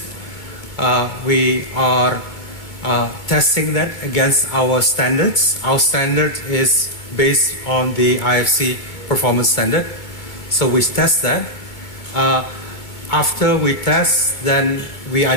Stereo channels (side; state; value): right; late; 2.3 ms